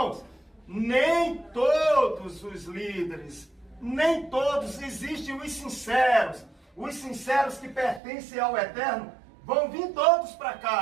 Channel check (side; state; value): left; drops out; at 8.0 s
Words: nem todos os líderes, nem todos, existem os sinceros que pertencem ao Eterno, vão vir todos para